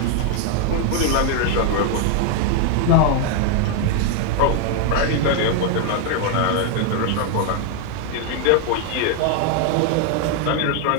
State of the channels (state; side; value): different; both; correlation 0.00